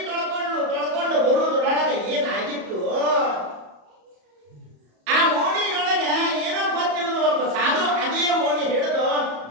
ತೊಳ್ಕೊಂಡು ಬರುವುದ್ರೊಳಗೆ ಏನಾಗಿತ್ತು, ಆ ಓಣಿಯೊಳಗೆ ಏನೋ ಗೊತ್ತಿಲ್ಲದ ಒಬ್ಬ ಸಾಧು ಅದೇ ಓಣಿ ಹಿಡಿದು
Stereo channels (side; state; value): left; late; 34 ms